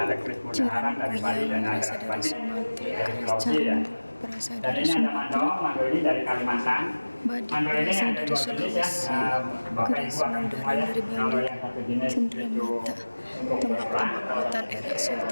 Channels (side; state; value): both; inverted; correlation -1.00